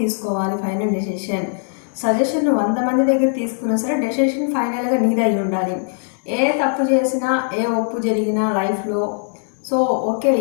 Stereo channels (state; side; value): silent; right; 64 dB below the other